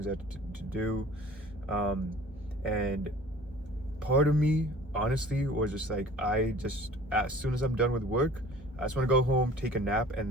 I had to do, and part of me honestly was just like, as soon as I'm done with work, I just want to go home, take a nap, and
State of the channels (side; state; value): both; normal; correlation 0.47